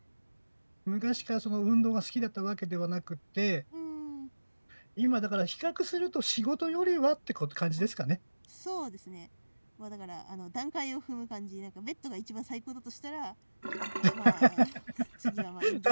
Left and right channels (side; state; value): both; inverted; correlation -1.00